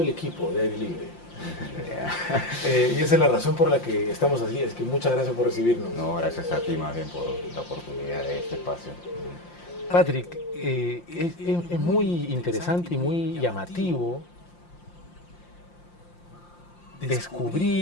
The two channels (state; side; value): late; right; 5.7 ms